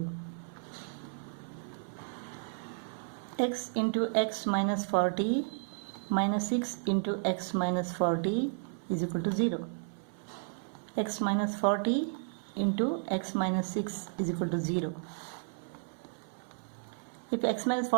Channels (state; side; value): silent; left; 56 dB below the other